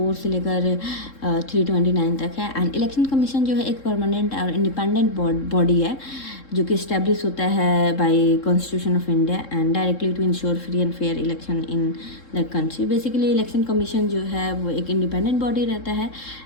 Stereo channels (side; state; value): right; late; 3.7 ms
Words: से लेकर 329 तक है। एंड इलेक्शन कमीशन जो है एक परमानेंट और इंडिपेंडेंट बॉडी है जो कि इस्टेब्लिश होता है by constitution of India and directly to ensure free and fair election in the country. Basically election commission जो है वो एक इंडिपेंडेंट बॉडी रहता है